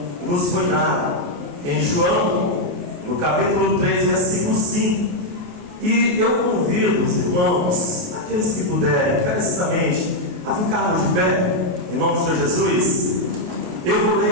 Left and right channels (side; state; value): left; late; 28 ms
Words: nos foi dado em João, no capítulo 3, versículo 5. E eu convido os irmãos, aqueles que puderem, encarecidamente, a ficarmos de pé, em nome do Senhor Jesus. Eu vou